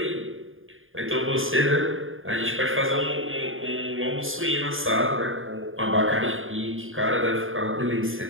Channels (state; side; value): late; left; 0.59 ms